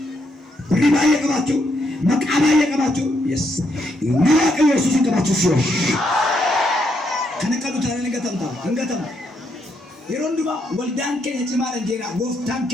ሪባየ ቀባቱ መቃባየ ቀባቱ yes ናቀ ኢየሱስ ቀባቱ ሲዮ ከነቀዱ ታረን እንገተም የሮንዱባ ወልዳን ከየጭማረ ጀራ ጎፍታን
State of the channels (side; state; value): both; normal; correlation 0.77